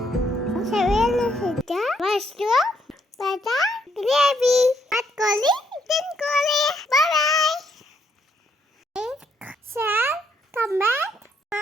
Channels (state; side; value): normal; both; correlation 0.73